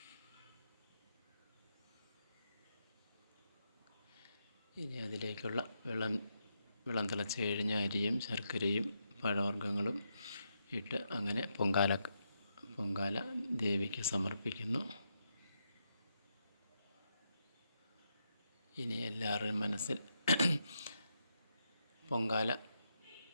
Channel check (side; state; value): both; inverted; correlation -0.83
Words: ഇനി അതിലേക്കുള്ള വെള്ളം തിളച്ച് കഴിഞ്ഞ അരിയും ശർക്കരയും പഴവർഗ്ഗങ്ങളും ഇട്ട് അങ്ങനെ പൊങ്കാല ദേവിക്ക് സമർപ്പിക്കുന്നു. ഇനി എല്ലാവരുടെയും മനസ്സിൽ പൊങ്കാല